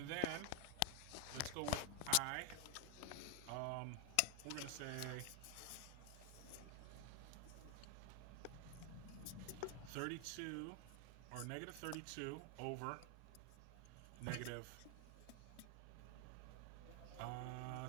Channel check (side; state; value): both; different; correlation 0.00